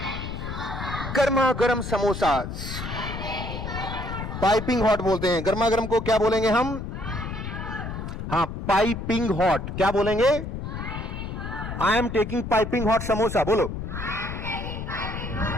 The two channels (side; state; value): left; noise; rumble, 6 dB below the sound